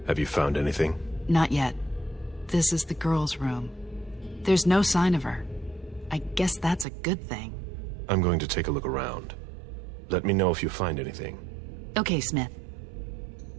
Have you found anything? Not yet. This is the girl's room. There's no sign of her. I guess that's a good thing. I'm going to take a look around. Let me know if you find anything. Okay, Smith.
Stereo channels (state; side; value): drops out; left; at 6.9 s